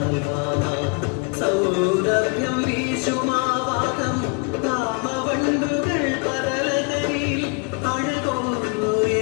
സൗരഭ്യം വീശുമാവാകം കാമവണ്ടുകൾ പതലകരിൽ അഴകോന്നു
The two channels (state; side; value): quieter; right; 32.7 dB